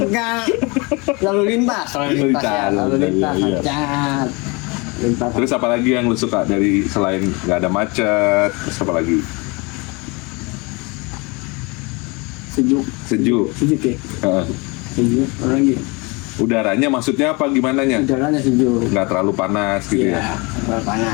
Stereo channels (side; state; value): right; quieter; 28.0 dB